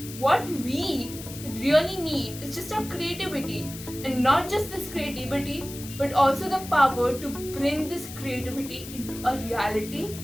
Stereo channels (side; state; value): left; noise; hiss, 13 dB below the sound